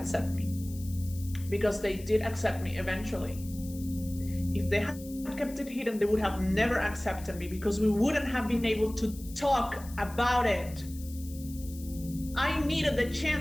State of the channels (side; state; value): left; noise; hiss, 18 dB below the sound